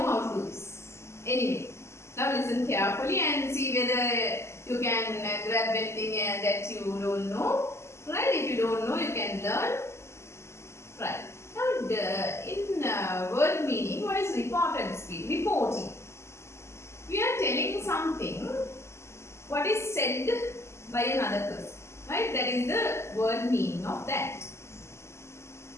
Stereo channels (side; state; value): right; late; 0.13 ms